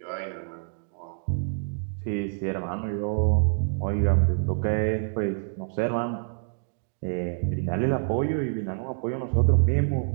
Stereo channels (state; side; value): silent; left; digital silence